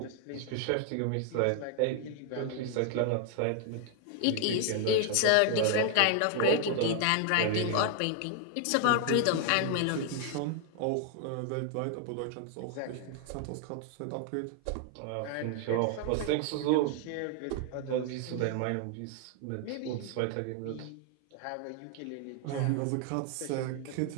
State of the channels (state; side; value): different; both; correlation 0.00